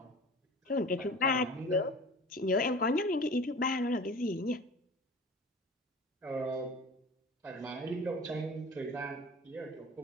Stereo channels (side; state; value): both; normal; correlation 0.40